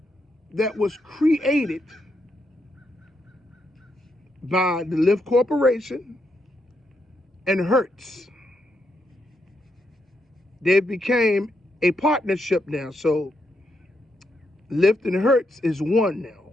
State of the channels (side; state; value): both; normal; correlation 0.80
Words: that was created by the Lyft Corporation and Hertz. They became a partnership now, so Lyft and Hertz is one now,